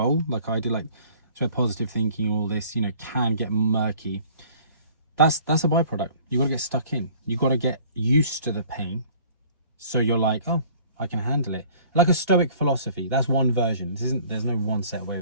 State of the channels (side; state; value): both; inverted; correlation -0.52